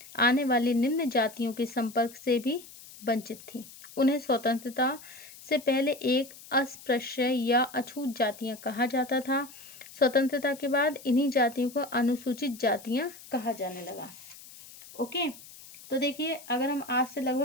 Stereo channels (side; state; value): left; noise; hiss, 18 dB below the sound